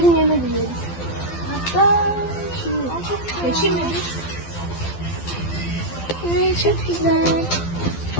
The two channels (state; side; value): late; right; 12 ms